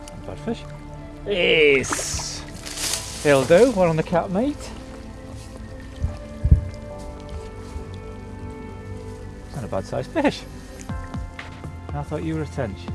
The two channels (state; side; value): identical; both; correlation 1.00